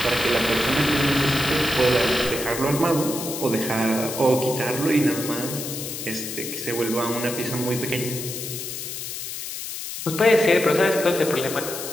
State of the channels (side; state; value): left; noise; hiss, 7 dB below the sound